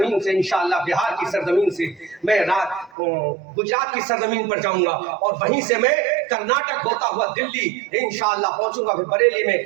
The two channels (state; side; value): drops out; left; at 2.9 s